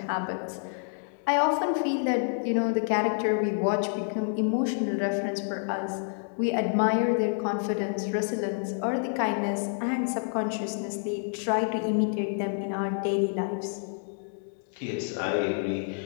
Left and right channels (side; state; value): right; silent; digital silence